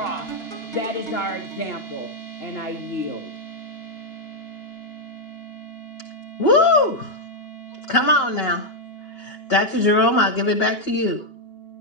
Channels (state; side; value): late; right; 2.9 ms